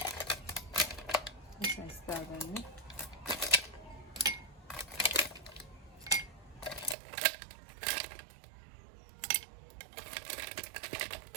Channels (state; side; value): drops out; left; at 7.0 s